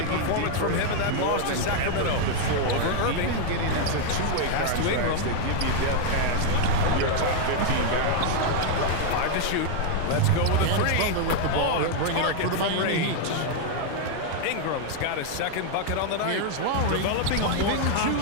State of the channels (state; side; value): different; both; correlation 0.00